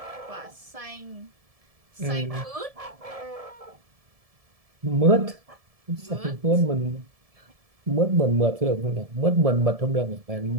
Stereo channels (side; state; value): left; late; 1.7 ms